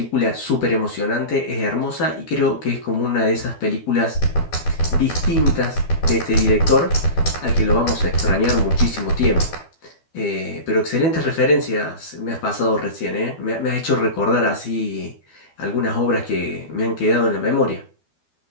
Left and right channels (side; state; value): right; late; 12 ms